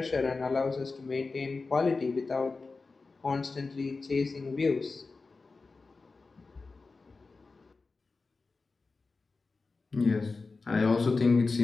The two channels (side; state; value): right; quieter; 4.0 dB